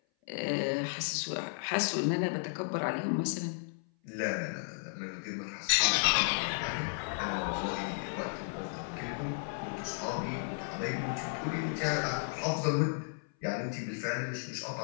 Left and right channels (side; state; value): right; silent; 55 dB below the other